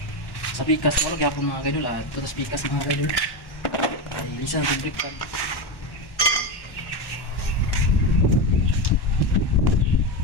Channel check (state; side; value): late; right; 1.1 ms